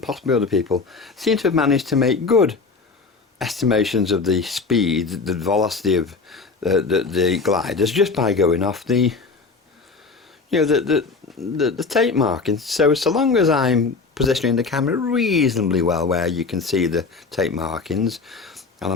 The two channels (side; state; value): right; quieter; 4.4 dB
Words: possibly other people seem to have managed to make good estimations of the speed, the velocity of the gliders just by going off the, you know, the tape markings. So long as I'm positioning the camera reasonably well where you can see the tape markings, and